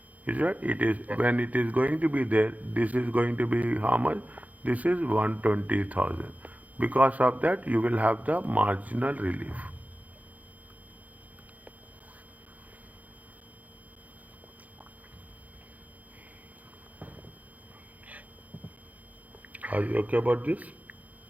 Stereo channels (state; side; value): late; left; 0.075 ms